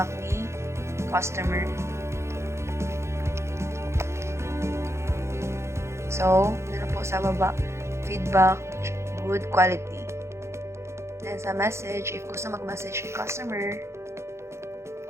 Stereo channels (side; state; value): left; late; 0.13 ms